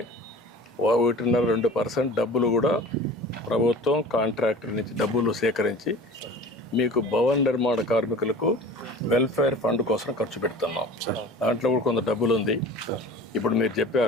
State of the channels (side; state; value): both; normal; correlation 0.40